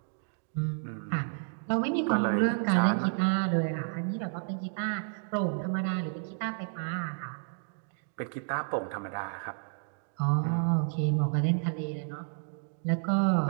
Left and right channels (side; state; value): left; silent; 57 dB below the other